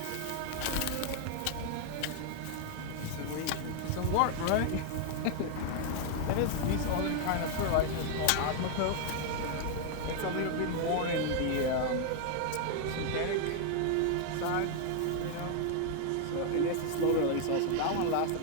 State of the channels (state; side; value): different; both; correlation 0.00